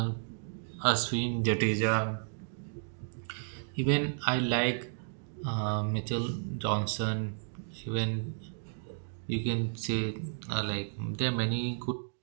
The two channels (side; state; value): left; silent; digital silence